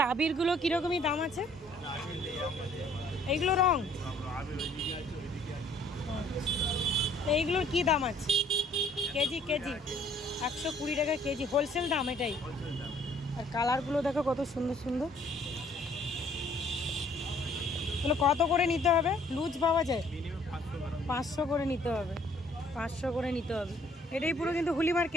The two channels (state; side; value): normal; both; correlation 0.60